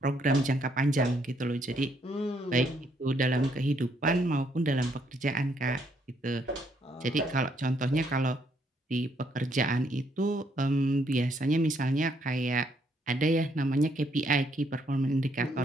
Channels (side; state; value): both; normal; correlation 0.71